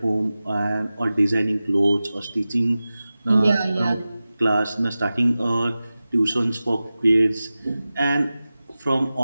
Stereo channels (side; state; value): both; inverted; correlation -0.96